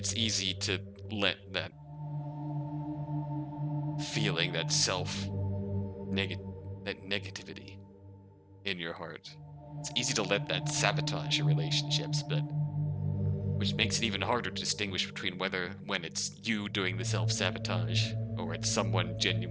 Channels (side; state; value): both; identical; correlation 1.00